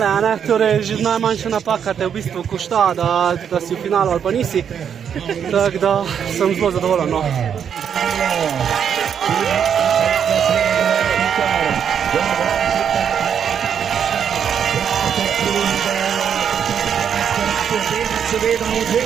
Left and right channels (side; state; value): left; quieter; 8.0 dB